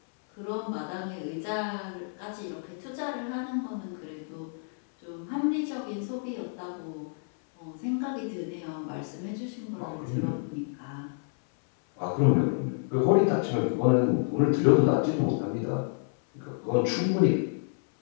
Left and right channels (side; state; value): right; silent; 57 dB below the other